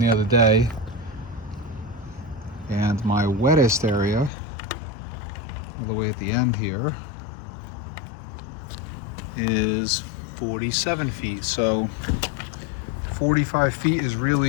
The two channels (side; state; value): right; drops out; at 4.3 s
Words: other day. And my wettest area, all the way at the end here, is 47 feet. So 45 feet is